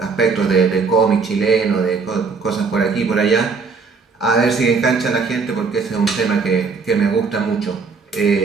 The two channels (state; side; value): quieter; left; 4.8 dB